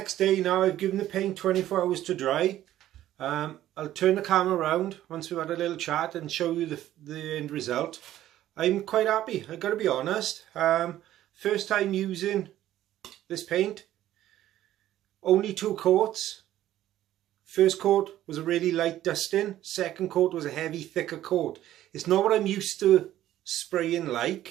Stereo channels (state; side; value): quieter; left; 13.2 dB